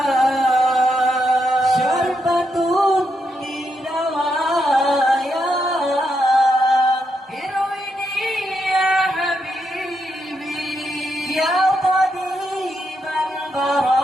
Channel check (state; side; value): normal; both; correlation 0.81